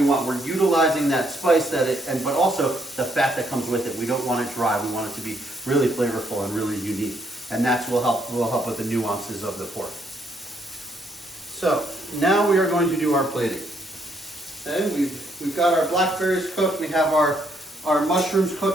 want. We're utilizing that spice but also the fat that comes with it. We don't want it dry. We want it to be really flavorful and really unique. And that's will help with the nuances of the pork. So now we are going to do our plating. Okay, we've got our blackberries cooked. We have our mushrooms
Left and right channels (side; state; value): both; normal; correlation 0.72